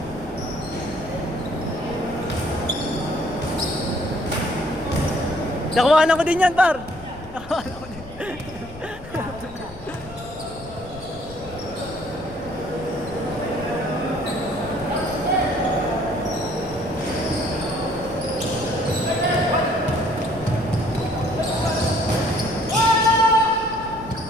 Nakuhanan ko din yan, par. Nakuhanan ko din.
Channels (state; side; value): noise; left; rumble, 16 dB below the sound